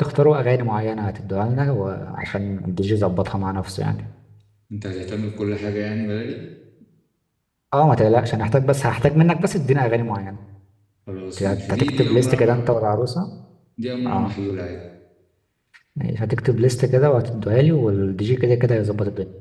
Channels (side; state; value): both; identical; correlation 1.00